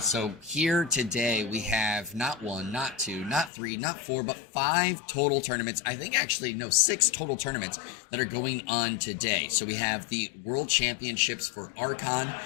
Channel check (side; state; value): right; drops out; at 3.5 s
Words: So here today we have not one, not two, not three, not four, but 5 total tournaments. I think actually, no, 6 total tournaments that are going on today. So we have the World Championships for Archon